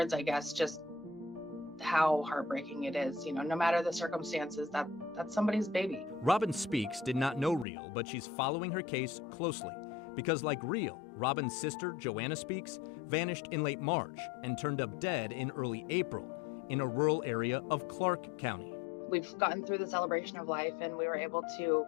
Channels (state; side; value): drops out; right; at 7.7 s